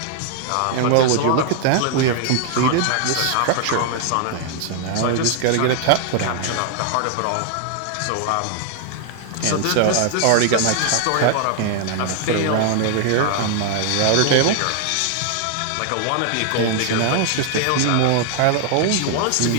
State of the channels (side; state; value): both; different; correlation 0.00